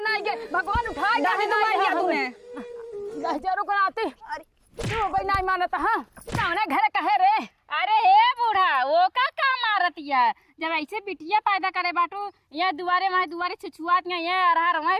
ना गए भगवान उठाए काहे ना गया तूने 10,000 को आते तू भाई नहीं मानता हां कौन घर कहे रे। अरे हे बूढ़ा वो का मारतिया जब ऐसे बिटिया पैदा करे बाटू ये दुआरे वहाँ दुआरे छुछुआत ये अरहर वहाँ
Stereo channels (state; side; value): identical; both; correlation 1.00